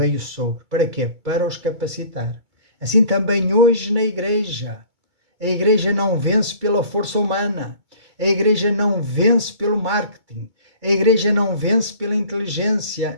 sobre. Para quê? Para os capacitar. Assim também hoje na igreja. A igreja não vence pela força humana. A igreja não vence pelo marketing. A igreja não vence pela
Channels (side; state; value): left; late; 2.2 ms